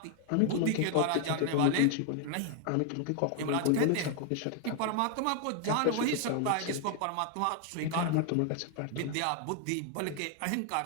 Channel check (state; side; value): different; both; correlation 0.00